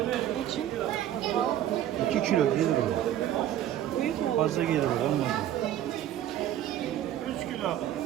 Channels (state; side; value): quieter; left; 11.8 dB